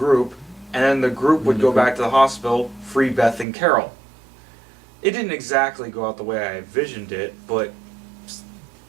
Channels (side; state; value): left; drops out; at 3.5 s